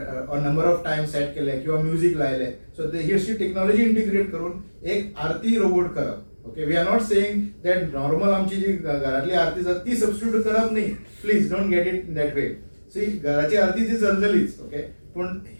और नंबर ऑफ टायम सेट केले किंवा म्युझिक लायले. सो ही अशी टेक्नॉलॉजी इंटिग्रेट करून एक आरती रोबोट करप. Okay, we are not saying that normal आमची जी घरातली आरती जाता ती सबस्टिट्यूट करप न्ही. Please don't get it in that way. See घराची आरती ती चलतलीच. ओके, पूण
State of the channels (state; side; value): inverted; both; correlation -1.00